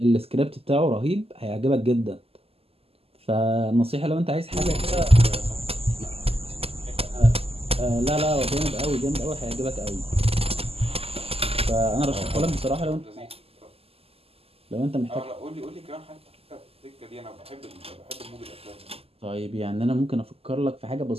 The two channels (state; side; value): late; left; 0.29 ms